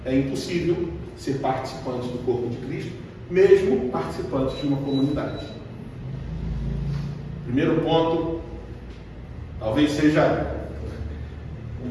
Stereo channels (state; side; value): identical; both; correlation 1.00